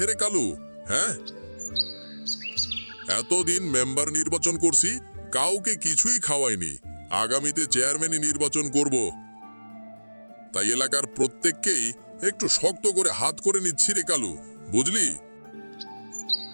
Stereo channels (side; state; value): both; inverted; correlation -1.00